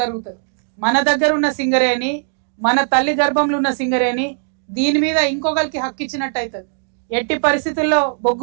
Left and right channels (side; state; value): left; silent; digital silence